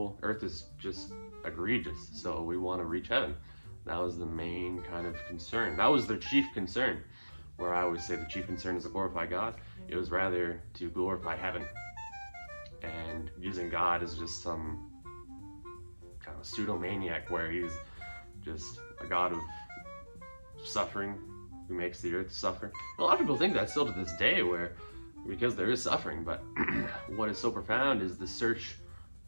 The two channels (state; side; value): inverted; both; correlation -1.00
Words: earth is just egregious, so we want to reach heaven. That was the main kind of concern. That was their chief concern, where I always say the chief concern is to glorify God. It was rather to glorify heaven. And using God as just some kind of pseudo-maniac, where he's just a God of suffering who makes the earth suffer. A lot of people think that still to this day, because there is suffering, but what is so profound is the search